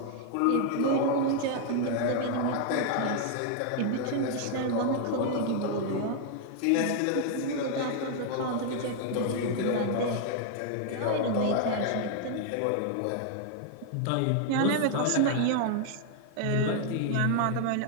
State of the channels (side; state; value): both; different; correlation 0.00